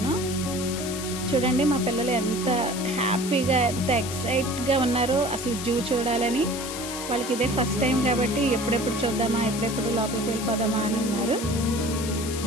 చూడండి మా పిల్లలు ఎంత హ్యాపీగా, ఎంత ఎక్సైట్గా ఉన్నారో అసలు జూ చూడాలని. వాళ్ళకి ఇదే ఫస్ట్ టైం కాబట్టి ఎప్పుడెప్పుడు చూద్దామా, ఎప్పుడెప్పుడు లోపలికి వెళ్ళిపోదామా అని ఉన్నారు.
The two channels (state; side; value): noise; left; hiss, 8 dB below the sound